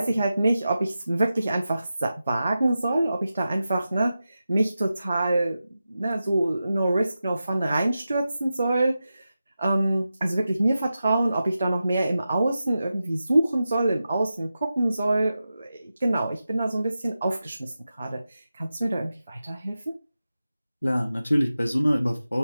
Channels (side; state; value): both; inverted; correlation -0.92